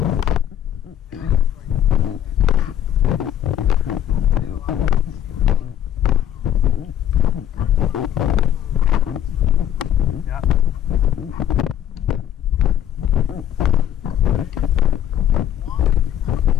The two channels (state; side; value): quieter; right; 10.8 dB